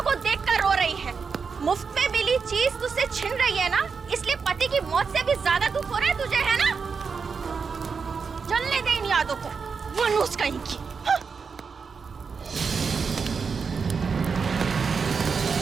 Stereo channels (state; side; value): quieter; left; 5.5 dB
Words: को देखकर रो रही है। मुफ्त में मिली चीज तुझसे छिन रही है ना, इसलिए पति की मौत से भी ज्यादा दुख हो रहा है तुझे, है ना? जलने दे इन यादों को, मनुष कहीं की।